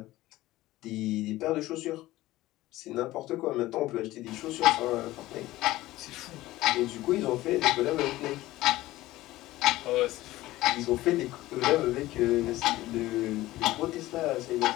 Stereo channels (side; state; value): right; quieter; 17.0 dB